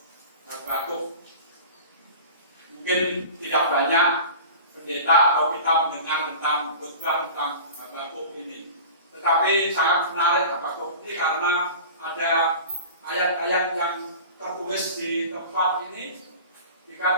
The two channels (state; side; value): inverted; both; correlation -0.37